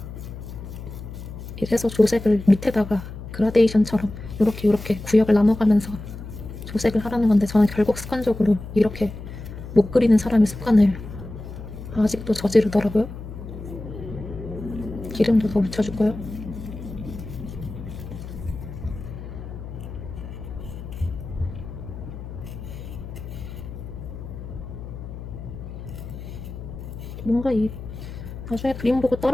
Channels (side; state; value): left; noise; hum, 11 dB below the sound